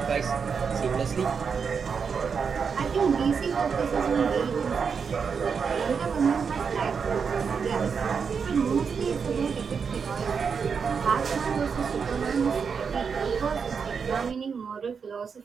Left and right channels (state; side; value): quieter; left; 6.0 dB